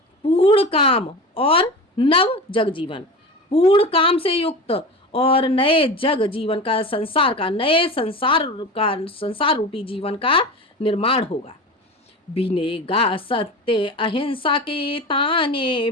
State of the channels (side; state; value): both; normal; correlation 0.30